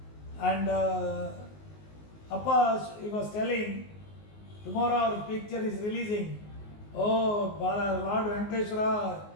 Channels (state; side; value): late; right; 19 ms